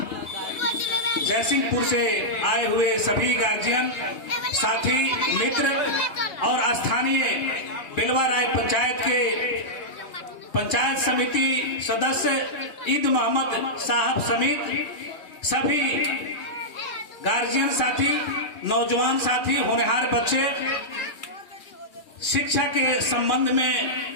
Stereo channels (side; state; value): right; late; 2.4 ms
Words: जयसिंहपुर से आए हुए सभी गार्जियन, साथी, मित्र और स्थानीय बिलवा राय पंचायत के पंचायत समिति सदस्य ईद मोहम्मद साहब समेत सभी गार्जियन साथी, नौजवान साथी, होनहार बच्चे, शिक्षा के संबंध में